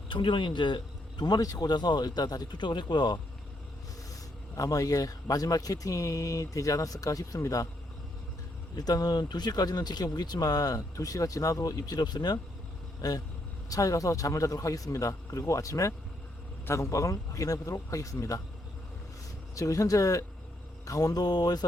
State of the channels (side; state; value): both; normal; correlation 0.76